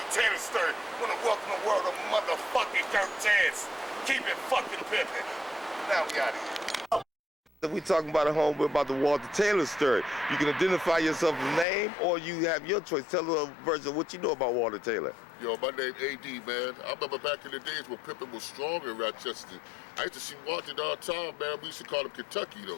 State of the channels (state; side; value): drops out; right; at 11.7 s